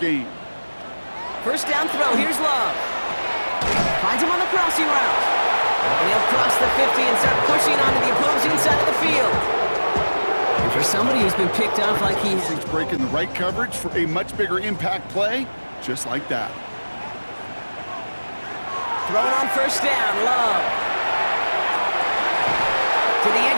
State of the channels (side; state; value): both; inverted; correlation -1.00